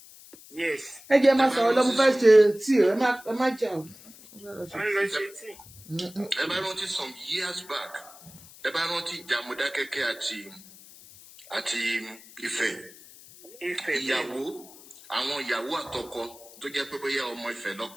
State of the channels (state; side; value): noise; left; hiss, 20 dB below the sound